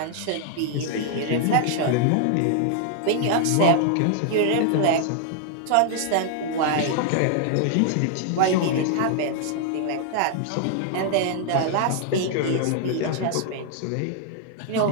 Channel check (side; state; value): both; different; correlation 0.00